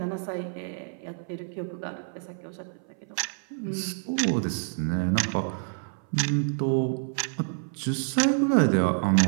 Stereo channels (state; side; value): silent; left; 57 dB below the other